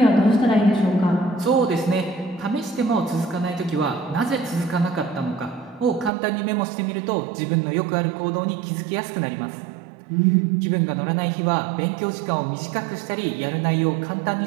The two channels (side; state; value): left; drops out; at 6.1 s